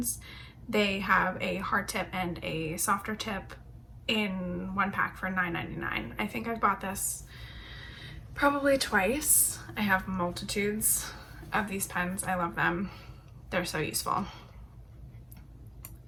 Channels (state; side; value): identical; both; correlation 1.00